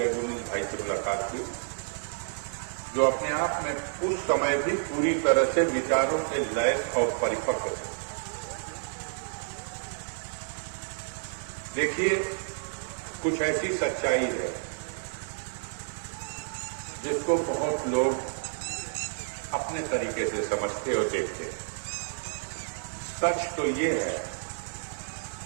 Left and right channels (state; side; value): silent; left; 58 dB below the other